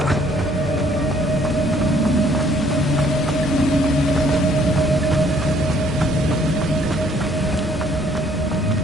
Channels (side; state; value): both; normal; correlation 0.62